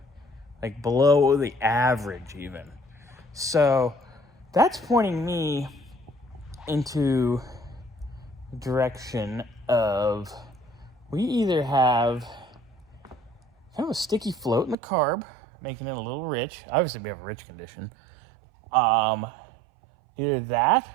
like below the average even. So that's pointing me into the direction of we either have kind of a sticky float in the carb, making it a little rich. Obviously, we have a rich condition. Either that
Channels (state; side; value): drops out; left; at 14.8 s